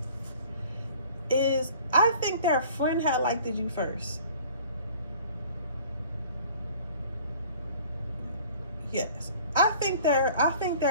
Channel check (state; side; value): inverted; both; correlation -0.50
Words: is, I think their friend had liked you first. Yes, I think their